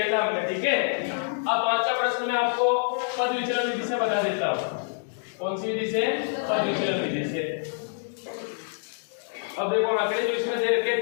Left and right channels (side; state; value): right; silent; digital silence